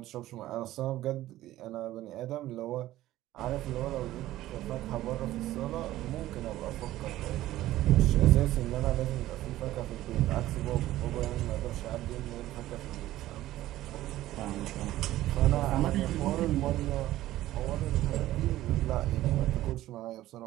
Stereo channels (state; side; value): quieter; left; 15.0 dB